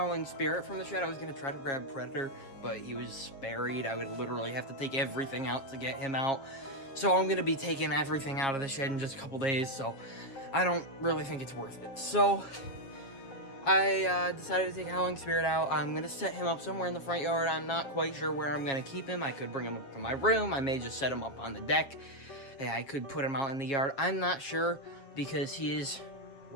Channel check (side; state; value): right; late; 7.4 ms